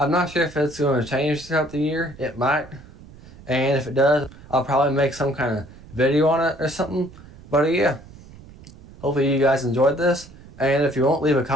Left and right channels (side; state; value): right; noise; rumble, 20 dB below the sound